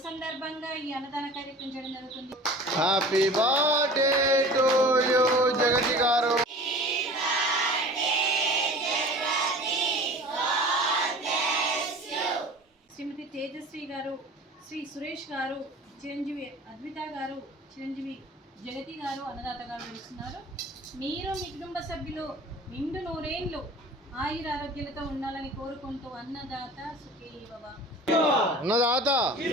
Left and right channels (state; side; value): normal; both; correlation 0.41